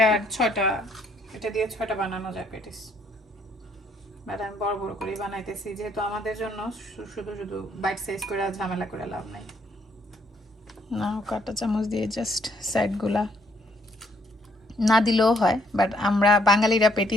6টা, এটা দিয়ে 6টা বানানো যায় পেটিস। বাট আমি বড় বড় করে বানাইতেছি, যেহেতু আমাদের জন্য শুধু শুধু বাইট সাইজ করে ঝামেলা করে লাভ নাই। না, কাঁটা চামচ দিয়ে জাস্ট সাইডগুলা না দিলেও হয়, বাট আমরা বাঙালিরা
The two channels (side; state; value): both; normal; correlation 0.68